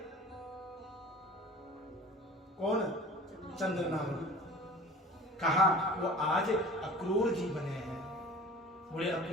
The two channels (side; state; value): both; normal; correlation 0.42